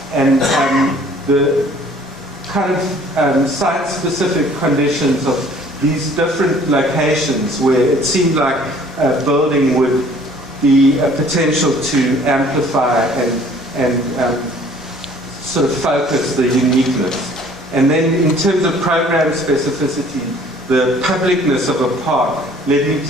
And the kind of site-specific conditions of these different locations where it seemed like a building would be a potential to amplify and sort of focus the uniqueness. And then in terms of program specificity, the publicness of a park led me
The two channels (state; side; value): normal; both; correlation 0.55